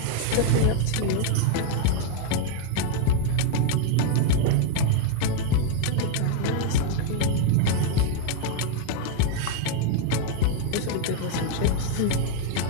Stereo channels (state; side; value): different; both; correlation 0.00